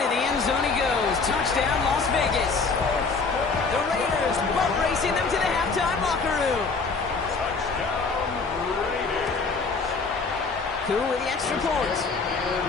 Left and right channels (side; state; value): right; quieter; 4.4 dB